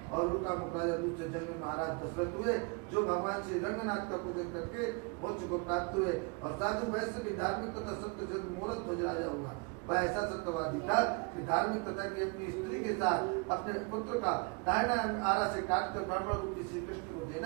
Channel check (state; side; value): quieter; left; 30.8 dB